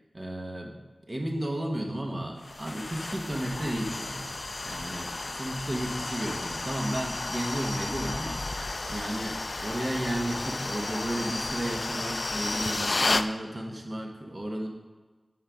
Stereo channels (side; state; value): both; normal; correlation 0.97